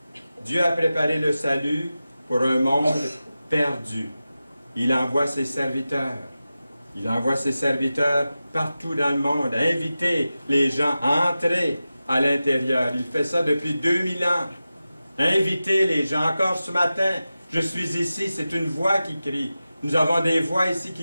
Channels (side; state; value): both; inverted; correlation -0.94